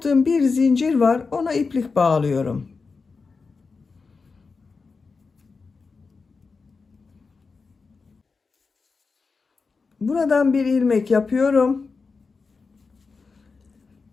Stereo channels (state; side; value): quieter; right; 4.6 dB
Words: bir zincir var. Ona iplik bağlıyorum. Buradan bir ilmek yapıyorum.